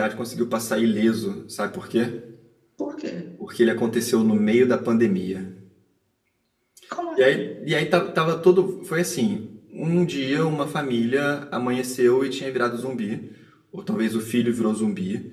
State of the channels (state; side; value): identical; both; correlation 1.00